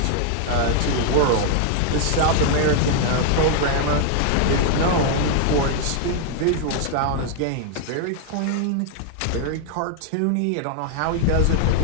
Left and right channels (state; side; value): different; both; correlation 0.00